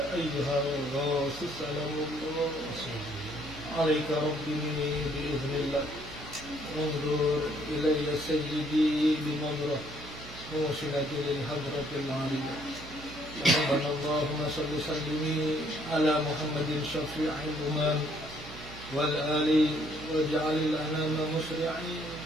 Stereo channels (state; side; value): noise; right; hum, 15 dB below the sound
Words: أيها الغوث سلام الله عليك ربي بإذن الله انظر إلي سيدي بنظرة موصلة للحضرة العالية ربنا اللهم صل وسلم على محمد شفيع الأمم والآل واجعل الأنام مسرعين